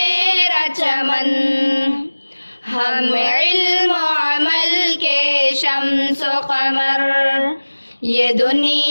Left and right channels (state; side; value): inverted; both; correlation -1.00